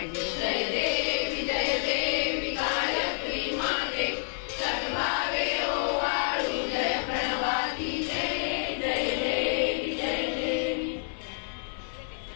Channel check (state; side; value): silent; right; 59 dB below the other